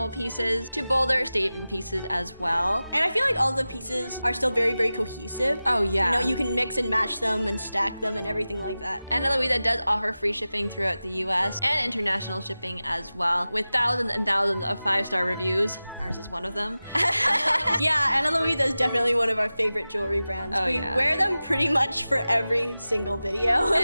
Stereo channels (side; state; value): both; inverted; correlation -0.95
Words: pieces to bolder statement pieces as well. And I feel like all the pieces are still very, very cohesive. Oh yeah. You know, you can mix and match them and stack them and everything like that. Ana Luisa does offer free shipping throughout the US and international shipping as well, with thousands and thousands of 5-star reviews. Ours is one of them. Yeah, Ana Luisa is definitely one of our favorite jewelry brands. Oh, we yeah. wear them pretty much for every single video.